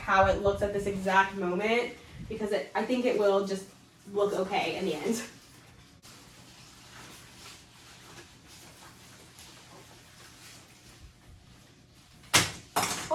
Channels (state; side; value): identical; both; correlation 1.00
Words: it looks at this exact moment because I think it will just look okay in the end.